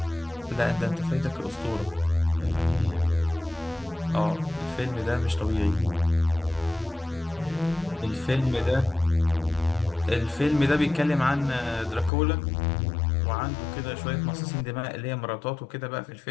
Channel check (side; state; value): right; drops out; at 12.1 s